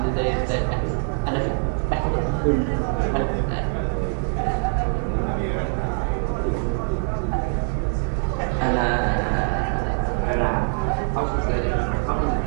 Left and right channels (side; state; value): left; silent; 57 dB below the other